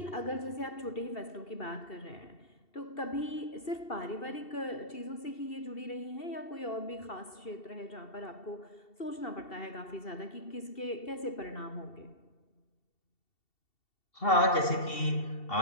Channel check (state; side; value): late; right; 2.7 ms